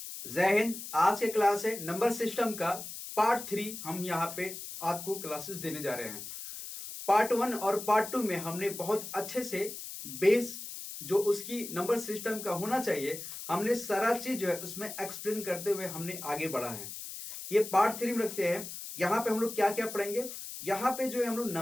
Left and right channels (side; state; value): left; noise; hiss, 9 dB below the sound